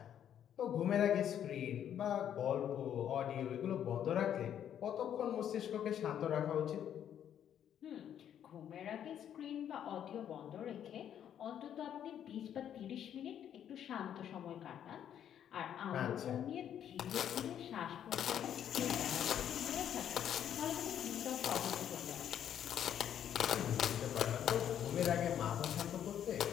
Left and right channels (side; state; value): right; quieter; 9.8 dB